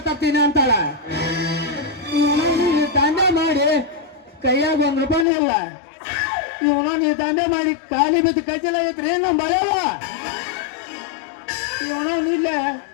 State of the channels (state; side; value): drops out; right; at 5.2 s